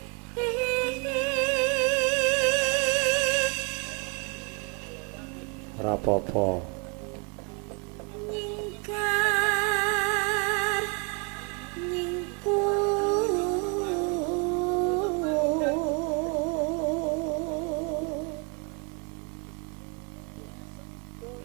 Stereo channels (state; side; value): quieter; left; 33.8 dB